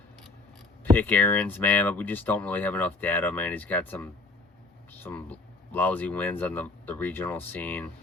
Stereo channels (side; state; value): right; quieter; 3.4 dB